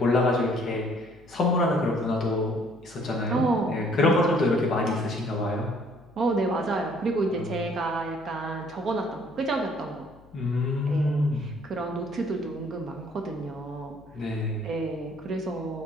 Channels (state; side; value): noise; left; hum, 25 dB below the sound